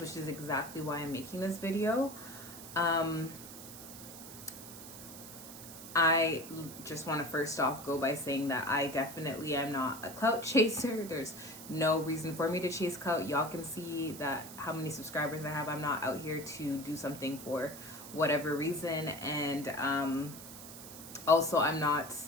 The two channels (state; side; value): noise; right; hiss, 13 dB below the sound